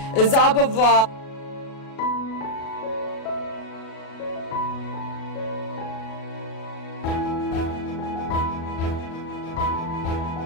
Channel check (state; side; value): late; right; 37 ms